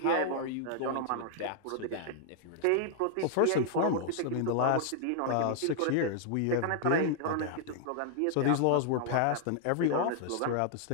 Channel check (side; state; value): both; different; correlation -0.01